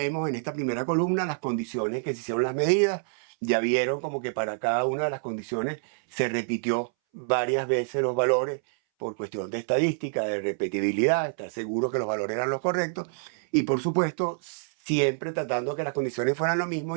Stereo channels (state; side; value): silent; left; 60 dB below the other